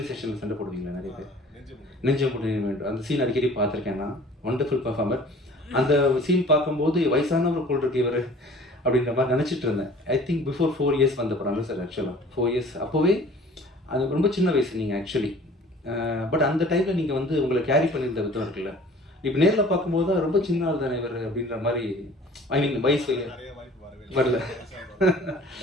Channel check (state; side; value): normal; both; correlation 0.48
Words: ஸ்டேஷனில் சண்டை போடுவீங்களா நிறைய பேர், நெஞ்சம் வேண்டும். அந்த சீன் அடிக்கடி பார்த்துருக்கேன் நான். Wonderful performer. அந்த சீன் பார்க்கும்போது வயசானவர் போல் இருக்கு இவர் அப்படின்ற மாதிரி நினச்சிட்டு இருந்தேன். ஐ திங்க் பிஃபோர் 4 இயர்ஸ் வந்த படம் இல்லை சார் ஆக்சுவலாக. 4 இயர்ஸ் அப்போவே அது ரொம்ப சின்ன வயசு நீங்கள் ஆக்சுவலி. பட் அந்த டைமில் நீங்கள் வந்து உங்களை கேரி பண்ணியிருந்த விதம் இருக்குல்ல, இப்போ நேரில் பார்க்கும்போது தான் ரொம்ப சின்ன ஆள் தானே இவர் அப்படின்ற மாதிரி, ஐ மீன் வயசு வரல.